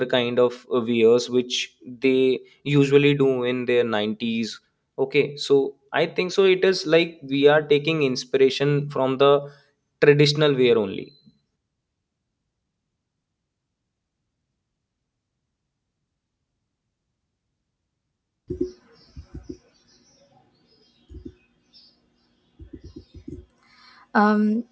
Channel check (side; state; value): both; identical; correlation 1.00